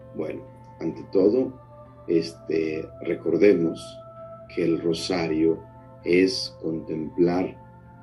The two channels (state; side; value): identical; both; correlation 1.00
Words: Bueno, ante todo, recordemos que el rosario es contemplar